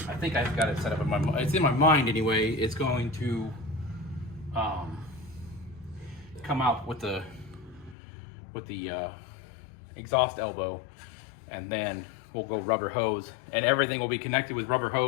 In my mind. It's in my mind anyway. It's going to come out with the exhaust elbow, and then we'll go rubber hose, and everything will be connected with rubber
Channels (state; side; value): drops out; right; at 8.0 s